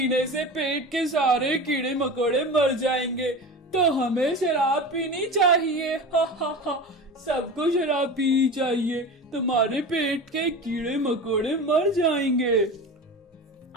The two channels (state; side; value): normal; both; correlation 0.31